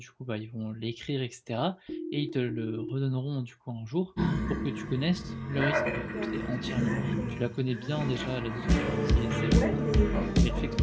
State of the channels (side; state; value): both; identical; correlation 1.00